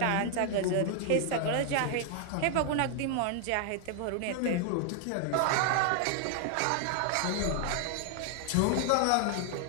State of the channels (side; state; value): both; different; correlation 0.00